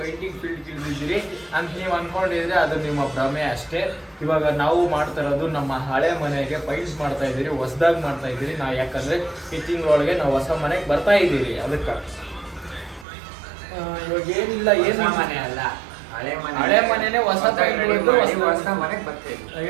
ಫೀಲ್ಡ್ ಇಳಿದಿದ್ದೀರಿ ಅಂತ ನೀವು ಅನ್ಕೊಂಡಿದ್ರೆ ಅದು ನಿಮ್ಮ ಭ್ರಮೆ ಅಷ್ಟೇ. ಇವಾಗ ನಾವು ಮಾಡ್ತಾ ಇರೋದು ನಮ್ಮ ಹಳೆ ಮನೆಗೆ ಪೈಂಟ್ ಮಾಡ್ತಾ ಇದ್ದೀರಿ, ಹೊಸದಾಗಿ ಮಾಡ್ತಾ ಇದ್ದೀರಿ ನಾವು. ಯಾಕಂದ್ರೆ ಈ ತಿಂಗಳೊಳಗೆ ನಾವು ಹೊಸ ಮನೆಗೆ ಬರ್ತಾ ಇದ್ದೀರಿ. ಅದಕ್ಕೆ ಇವಾಗ ಏನಿಲ್ಲ, ಏನು ಮನೆ ಅಲ್ಲ, ಹಳೆ ಮನೆನೇ ಹೊಸ ಪೈಂಟ್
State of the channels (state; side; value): drops out; left; at 13.1 s